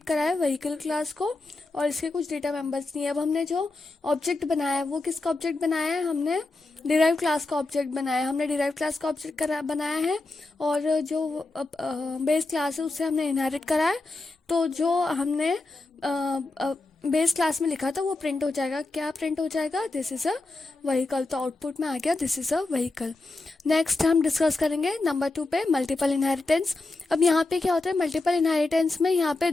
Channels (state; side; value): quieter; right; 3.2 dB